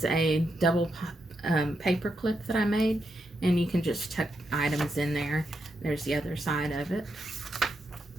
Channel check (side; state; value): both; normal; correlation 0.83